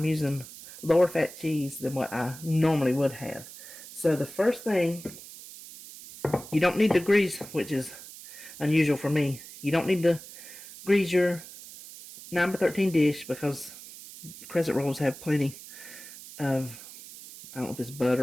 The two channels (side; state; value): right; noise; hiss, 15 dB below the sound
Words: using lower fat cheese than what I normally would have. So the first thing, you don't need to grease, which is unusual for me. You don't need to grease your 9x13 dish because crescent rolls have plenty of, I don't know if it's